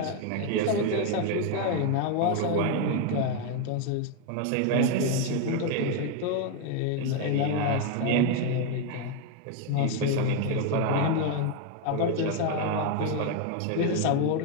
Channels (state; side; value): different; both; correlation 0.01